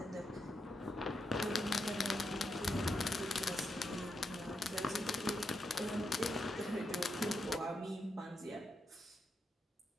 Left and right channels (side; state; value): both; normal; correlation 0.83